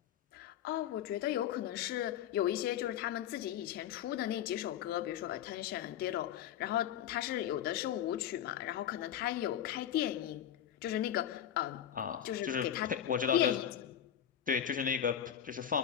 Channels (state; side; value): quieter; right; 10.1 dB